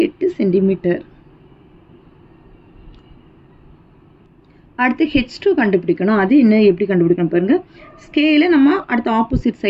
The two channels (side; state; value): both; identical; correlation 1.00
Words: சென்டிமீட்டர். அடுத்து H2 கண்டுபிடிக்கணும். அது என்ன எப்படி கண்டுபிடிக்கணும் பாருங்கள். ஸ்கேலை நம்ம அடுத்த ஆப்போசிட்